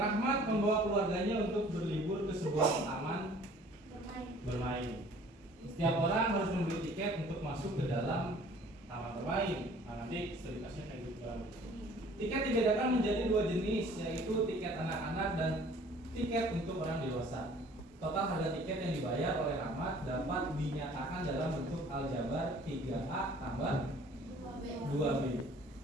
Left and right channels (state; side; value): normal; both; correlation 0.53